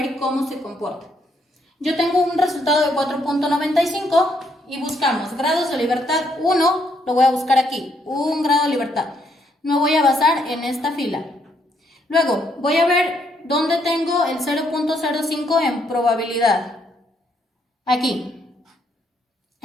cómo se comporta. Yo tengo un resultado de 4.95 y buscamos grados de libertad 1, lo voy a buscar aquí, un grado de libertad. Me voy a basar en esta fila. Luego voy a ver dónde tengo el 0.05 en probabilidad. Aquí.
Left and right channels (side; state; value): both; normal; correlation 0.73